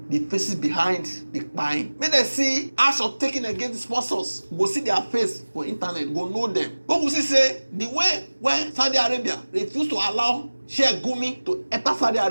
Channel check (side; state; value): both; inverted; correlation -1.00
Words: The faces behind the crime. May they see action taken against the sponsors. Go see their face for internet. Go know them. But we see say the way when Saudi Arabia refused to allow Sheikh Gumi to enter Saudi